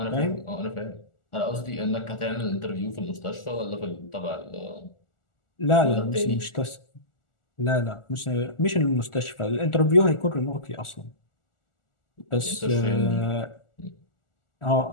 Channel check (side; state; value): right; late; 1.4 ms